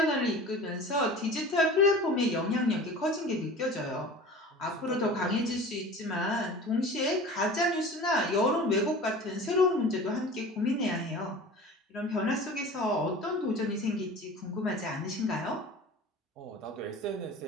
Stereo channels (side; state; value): both; normal; correlation 0.39